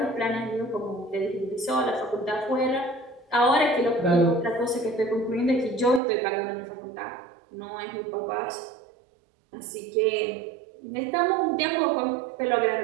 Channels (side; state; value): left; drops out; at 6.0 s